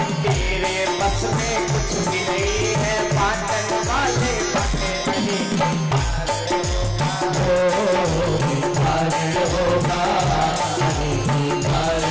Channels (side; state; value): both; identical; correlation 1.00